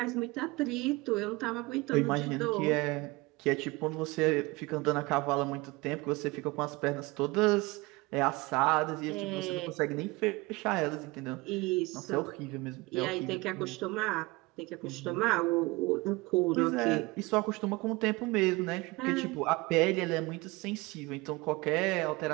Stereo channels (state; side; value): quieter; left; 23.2 dB